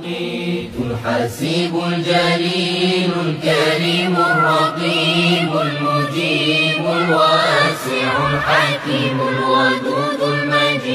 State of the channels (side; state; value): both; identical; correlation 1.00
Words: الحسيب الجليل الكريم الرقيب المجيب الواسع الحكيم الودود